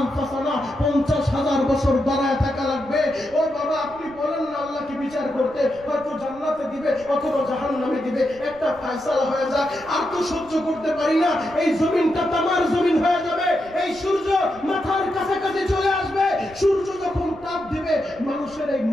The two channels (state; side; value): noise; right; rumble, 23 dB below the sound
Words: বছর দাঁড়ায় থাকা লাগবে। ও বাবা আপনি বলেন না আল্লাহকে বিচার করতে, হয়তো জান্নাতে দিবে অথবা জাহান্নামে দিবে, একটা ফয়সালা হয়ে যাক। আর তো সহ্য করতে পারি না, এই জমিনটা তামার জমিন হয়ে যাবে, এই সূর্য মাথার কাছাকাছি চলে আসবে। সূর্য যখন তাপ দিবে মানুষের এই